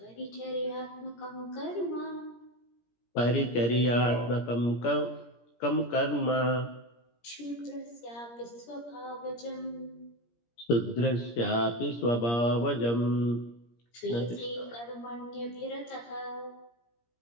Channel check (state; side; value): late; right; 17 ms